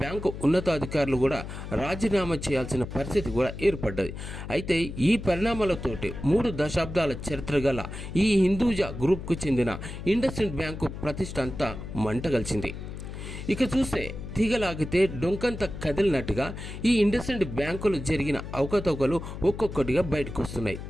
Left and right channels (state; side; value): noise; left; hum, 9 dB below the sound